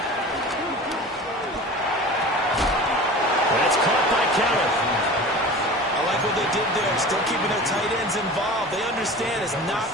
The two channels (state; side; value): normal; both; correlation 0.37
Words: That's caught by Kenneth. I like what they did there, still keeping their tight ends involved. They understand it's not